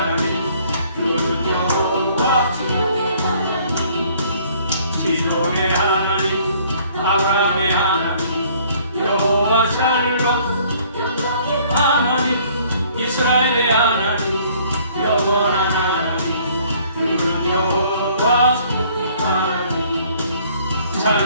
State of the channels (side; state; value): both; inverted; correlation -0.59